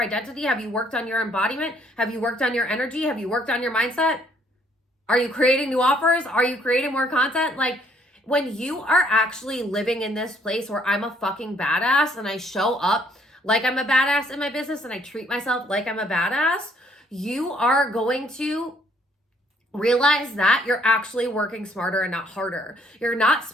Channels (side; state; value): both; normal; correlation 0.65